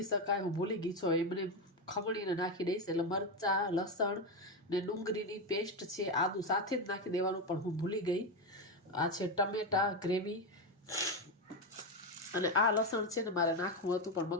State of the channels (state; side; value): normal; both; correlation 0.11